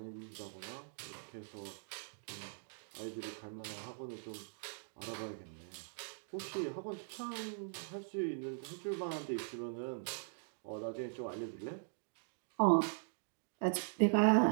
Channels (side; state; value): left; silent; digital silence